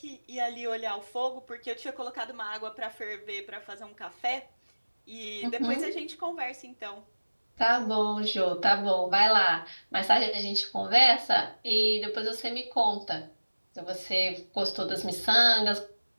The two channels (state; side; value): inverted; both; correlation -1.00